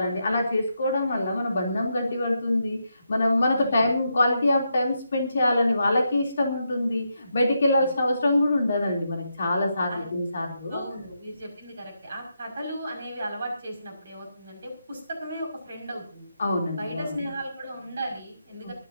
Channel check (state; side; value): inverted; both; correlation -0.83